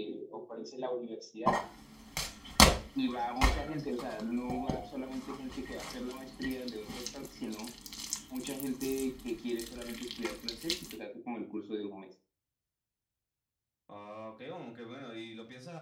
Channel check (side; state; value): both; identical; correlation 1.00